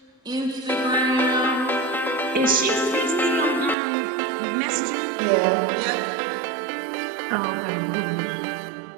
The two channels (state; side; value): drops out; left; at 3.8 s